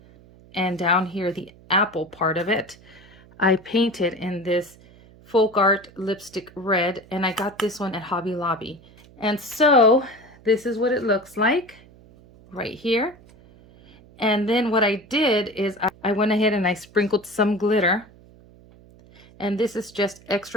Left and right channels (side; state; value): right; noise; hum, 25 dB below the sound